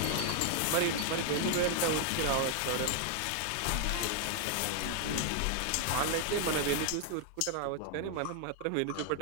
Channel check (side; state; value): both; different; correlation 0.00